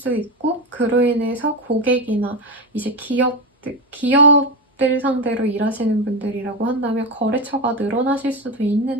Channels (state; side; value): normal; both; correlation 0.16